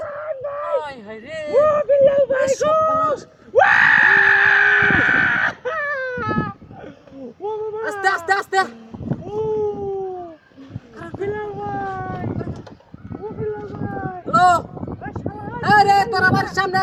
আস্তে আস্তে আস্তে হ্যালো আরে তোর আমার সামনে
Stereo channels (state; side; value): identical; both; correlation 1.00